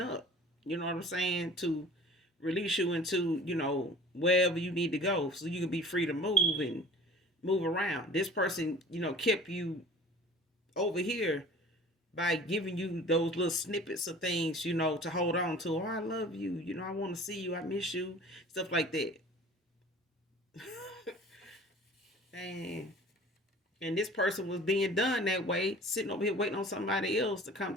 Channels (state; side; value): normal; both; correlation 0.45